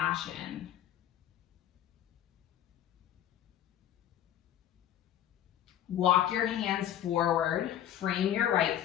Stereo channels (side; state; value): right; quieter; 11.2 dB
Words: Walk your hands forward, frame your right